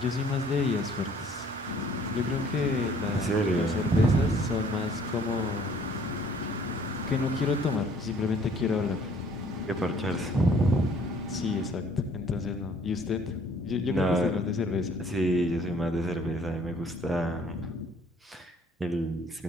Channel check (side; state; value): both; normal; correlation 0.58